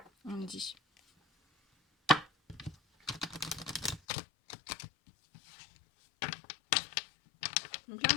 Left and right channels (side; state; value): right; drops out; at 4.0 s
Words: on me dit. Donc là,